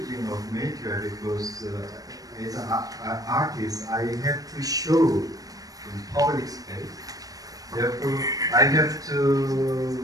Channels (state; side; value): late; left; 0.18 ms